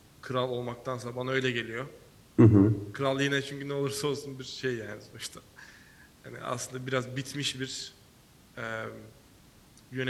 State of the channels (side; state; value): both; identical; correlation 1.00